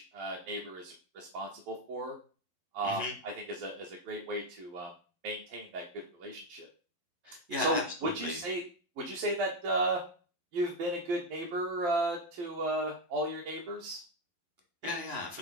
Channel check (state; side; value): late; left; 12 ms